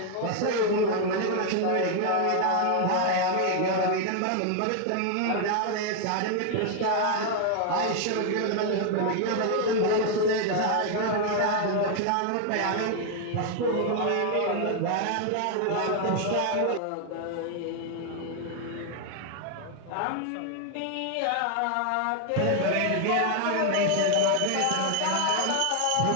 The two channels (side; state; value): both; different; correlation 0.00